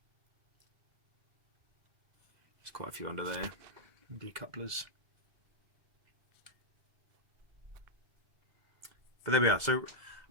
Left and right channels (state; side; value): late; left; 2.0 ms